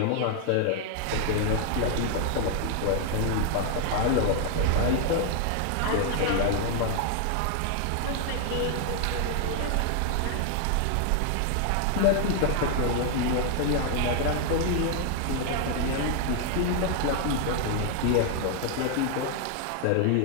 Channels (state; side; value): different; both; correlation 0.00